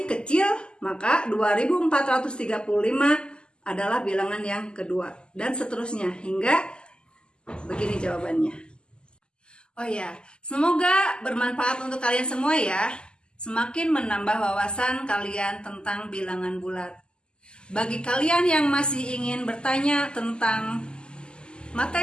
kecil, maka 2435 adalah bilangan yang kedua. Dan seterusnya hingga begini jawabannya. Oh ya, semoga bermanfaat untuk kalian semua ya. Semakin menambah wawasan kalian tentang bilangan bulat. Bagi kalian yang masih ingin bertanya tentang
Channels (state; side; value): late; right; 0.048 ms